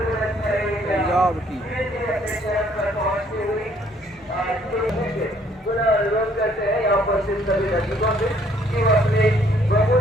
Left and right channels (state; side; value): normal; both; correlation 0.63